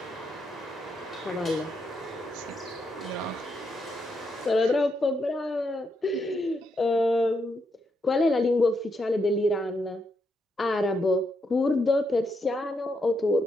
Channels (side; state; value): both; normal; correlation 0.80